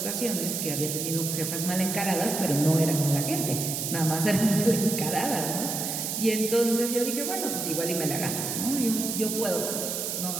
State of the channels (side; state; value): right; noise; hiss, 3 dB below the sound